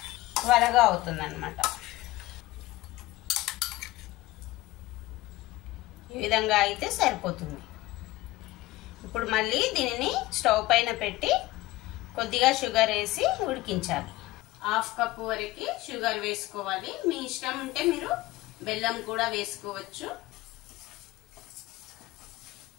త్వరగా అవుతుంది అన్నమాట. ఈ విధంగా అయితే సరిపోతుంది. ఇప్పుడు మళ్ళీ దీనిని స్టవ్ పైన పెట్టి కొద్దిగా షుగర్ వేసి ఉడికించాలి. 1/2 కప్పు వరకు షుగర్ వేసుకోవాలి. మీ ఇష్టం ఉంటే మీరు బెల్లం కూడా వేసుకోవచ్చు.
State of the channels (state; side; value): quieter; right; 18.4 dB